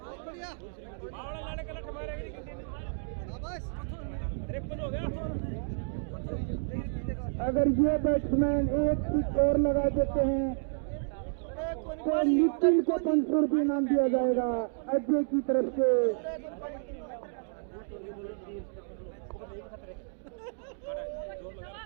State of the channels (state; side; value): silent; left; digital silence